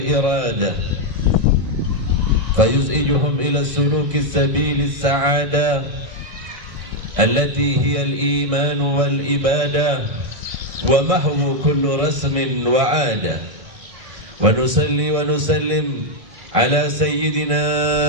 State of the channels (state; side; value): late; left; 1.6 ms